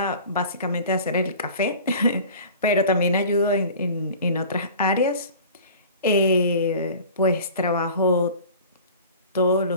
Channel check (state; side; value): inverted; both; correlation -0.42